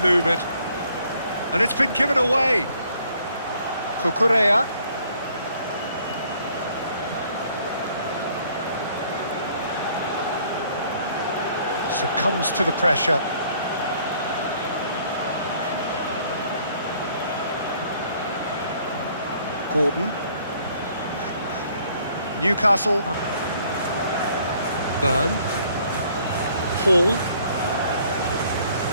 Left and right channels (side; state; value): both; inverted; correlation -0.62